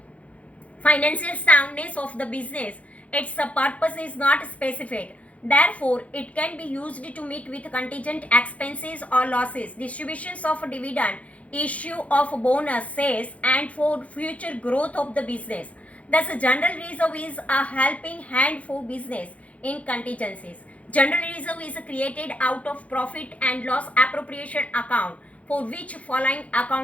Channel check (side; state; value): right; late; 0.065 ms